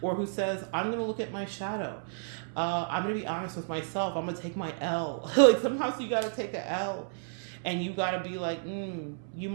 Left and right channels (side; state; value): left; silent; 57 dB below the other